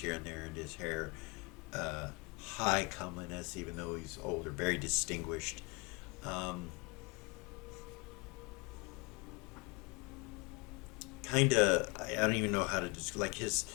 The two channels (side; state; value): right; quieter; 28.7 dB